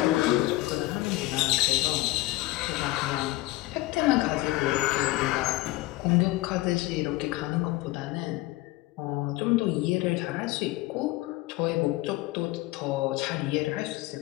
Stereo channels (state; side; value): quieter; right; 18.7 dB